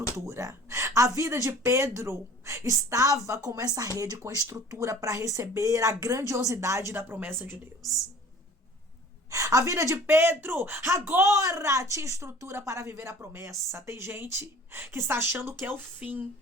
A vida de Pedro estava como essa rede com estrutura para receber a grandiosidade da promessa de Deus. A vida de Pedro agora tinha estrutura para viver a promessa. Tem gente que está achando que é o fim.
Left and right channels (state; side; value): normal; both; correlation 0.47